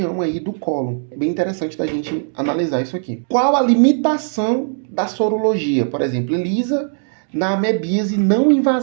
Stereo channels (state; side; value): silent; left; 67 dB below the other